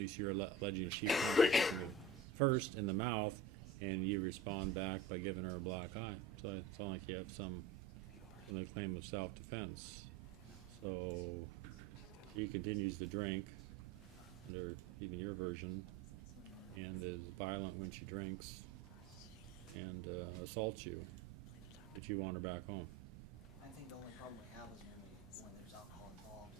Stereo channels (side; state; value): left; quieter; 4.2 dB